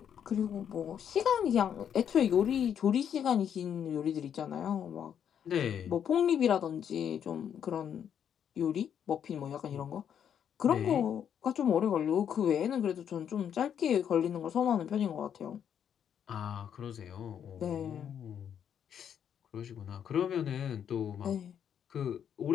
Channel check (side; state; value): right; quieter; 8.7 dB